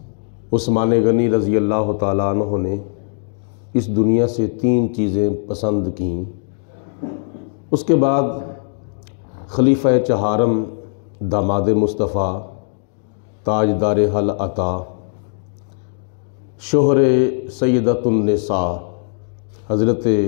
عثمان غنی رضی اللہ تعالیٰ عنہ نے اس دنیا سے 3 چیزیں پسند کیں، اس کے بعد خلیفہ چہارم داماد مصطفیٰ تاجدار حل عطا شوہر سیدۃ النساء حضرت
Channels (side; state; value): right; silent; digital silence